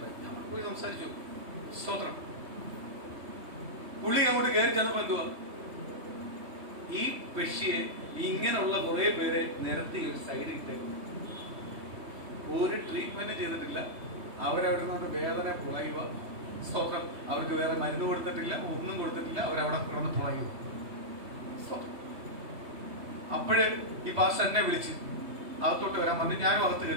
നമ്മൾ പോയി സംസാരിച്ചു. സ്തോത്രം. പുള്ളി അങ്ങോട്ട് കയറി ചെന്നപ്പോ എന്തുവാ, ഈ പെഷിയെ ഇങ്ങനെയുള്ള കുറെ പേരെ നിരത്തി ഒരു സൈഡിൽ ഇട്ടേക്കും. ഒരു ട്രീറ്റ്മെന്റ് ചെയ്തിട്ടില്ല. അവരവിടെ നിന്നോട്ട് വേദന പുളയുക. സ്തോത്രം. അവർക്ക് വേറെ മരുന്ന് കൊടുത്തിട്ടില്ല, ഒന്നും കൊടുത്തിട്ടില്ല. അവരവിടെ കിടന്ന് പുളയുക. അപ്പോഴേ ഈ പാസ്റ്റർ എന്നെ വിളിച്ച് അകത്തോട്ട് വരാൻ പറഞ്ഞു. ഞാനും അകത്ത്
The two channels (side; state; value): left; late; 3.2 ms